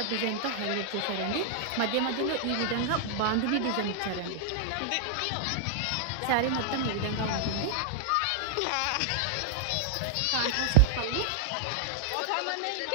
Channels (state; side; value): different; both; correlation -0.01